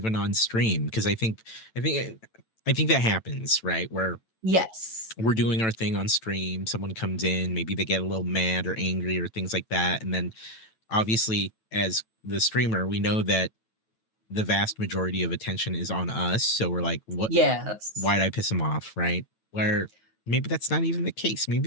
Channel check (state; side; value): late; right; 9.0 ms